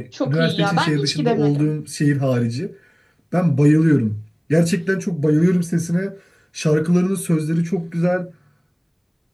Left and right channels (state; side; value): identical; both; correlation 1.00